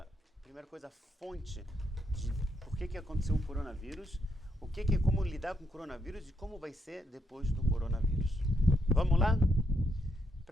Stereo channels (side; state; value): both; normal; correlation 0.77